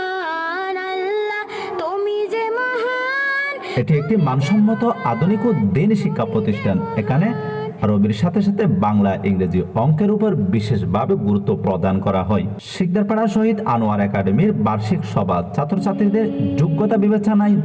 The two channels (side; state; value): both; identical; correlation 1.00